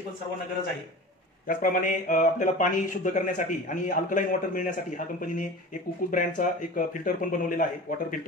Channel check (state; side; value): normal; both; correlation 0.35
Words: पण सर्वांना गरज आहे. त्याचप्रमाणे आपल्याला पाणी शुद्ध करण्यासाठी आणि अल्कलाईन वॉटर मिळण्यासाठी हा कंपनीने एक कुकू ब्रँडचा एक फिल्टर पण बनवलेला आहे, वॉटर